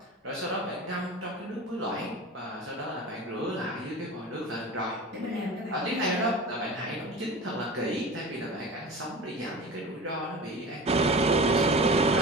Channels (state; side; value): normal; both; correlation 0.34